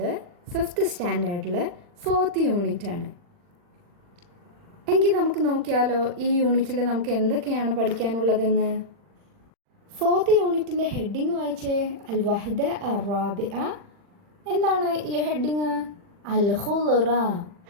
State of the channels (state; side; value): late; left; 40 ms